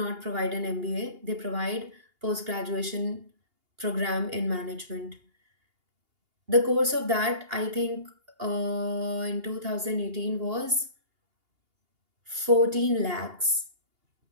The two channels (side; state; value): left; late; 2.8 ms